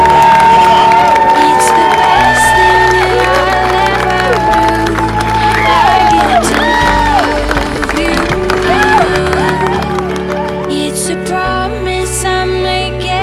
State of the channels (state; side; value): identical; both; correlation 1.00